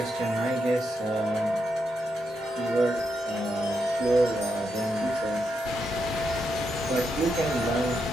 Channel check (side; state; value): both; normal; correlation 0.83